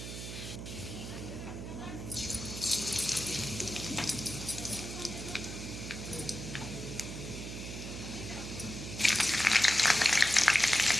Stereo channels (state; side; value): noise; right; hum, 8 dB below the sound